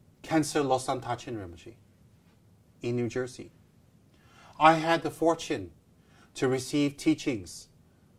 Khyentse Losang Tachin Rinpoche in New Jersey. I had the fortune to receive teachings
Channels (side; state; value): both; identical; correlation 1.00